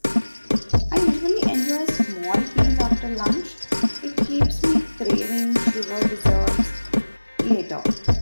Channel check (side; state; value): both; inverted; correlation -1.00